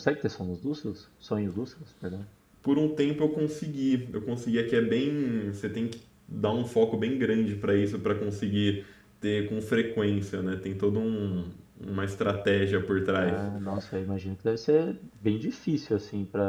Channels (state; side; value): identical; both; correlation 1.00